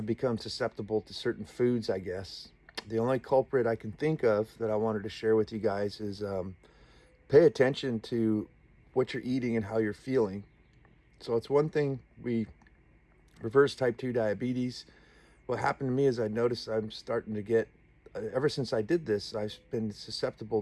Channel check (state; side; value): identical; both; correlation 1.00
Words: become susceptible to certain foods, I guess. The only culprit I can think of that I wanted to share with you guys is pay attention to what you're eating and how you're feeling. So it's one thing we reverse type 2 diabetes. What happened to me is I noticed I'm starting to get, ever since I did this, I've been susceptible